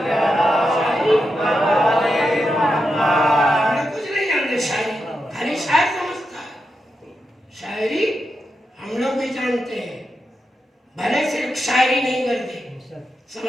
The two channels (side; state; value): both; normal; correlation 0.87